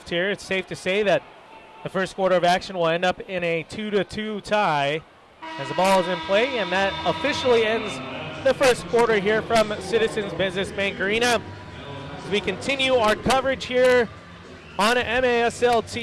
here. It's safe to say that the first quarter of action will end up in a 2-2 tie as the ball is in play, and that officially ends the first quarter here from Citizens Business Bank Arena. As we continue our coverage here on MASL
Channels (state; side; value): identical; both; correlation 1.00